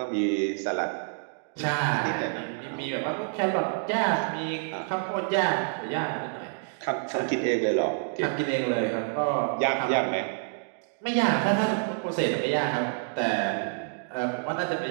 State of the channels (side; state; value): left; silent; digital silence